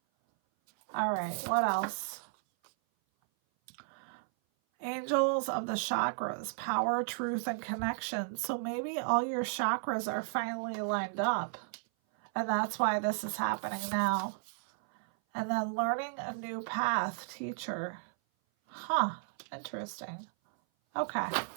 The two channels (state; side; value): silent; left; 55 dB below the other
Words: All right, what else? Angels of the chakras, power, truth, and connection. So maybe all your chakras are finally lined up. And that's why this is happening now. And then learning a new path, teacher. Huh, interesting. Okay.